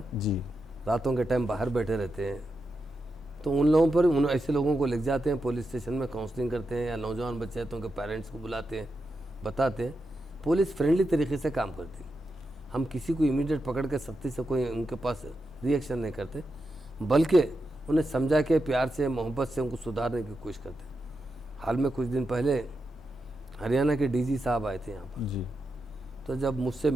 जी रातों के टाइम बाहर बैठे रहते हैं, तो उन लोगों पर, उन ऐसे लोगों को ले जाते हैं पुलिस स्टेशन में, काउंसलिंग करते हैं, या नौजवान बच्चे हैं तो उनके पेरेंट्स को बुलाते हैं, बताते हैं। पुलिस फ्रेंडली तरीके से काम करती है। हम किसी को इमीडिएट पकड़ के सख्ती से कोई उनके पास रिएक्शन नहीं करते, बल्कि उन्हें समझा के प्यार से, मोहब्बत से उनको सुधारने की कोशिश करते हैं। हाल में कुछ दिन पहले हरियाणा के DG साहब आए थे यहाँ पर, जी तो जब मुझसे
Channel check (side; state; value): both; normal; correlation 0.87